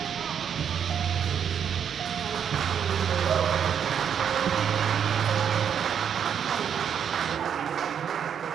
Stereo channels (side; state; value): left; quieter; 8.0 dB